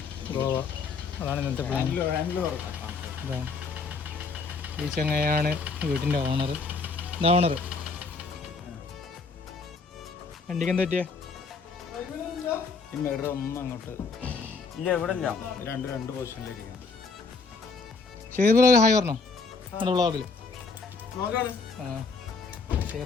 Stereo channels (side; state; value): right; quieter; 4.5 dB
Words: ഗോവ, അതാണ് ഇന്നത്തെ പ്ലാൻ. ഇതാ ഈ ചങ്ങയാണ് വീട്ടിൻ്റെ ഓണർ. ഇതാ ഓണർ. വണ്ടിക്ക് എന്താ പറ്റിയേ? അങ്ങോട്ട് ഇല്ല, ഇവിടെ രണ്ട് പൊസിഷനിലിരിക്കാം. ഷെയർ ബ്രോ ഹായ് പറഞ്ഞോ നമ്മുടെ വ്ളോഗിൽ. ആ